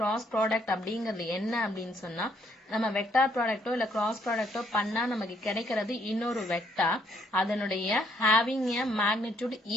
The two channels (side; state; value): both; normal; correlation 0.68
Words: product அப்படிங்கிறது என்ன அப்படின்னு சொன்னா, நம்ம vector ப்ராடக்டோ இல்ல cross ப்ராடக்டோ பண்ணா நமக்கு கிடைக்கிறது இன்னொரு வெக்டார், அதனுடைய ஹேவிங் எ மேக்னிடியூட்